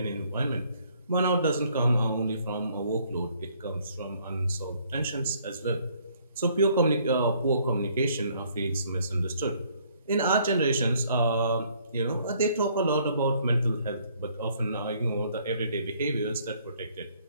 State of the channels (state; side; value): inverted; both; correlation -0.64